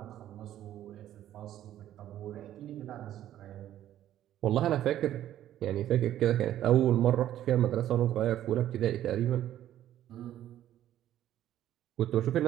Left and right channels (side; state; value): left; quieter; 12.2 dB